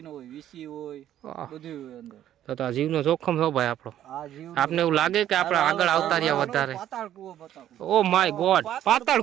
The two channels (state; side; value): quieter; left; 11.6 dB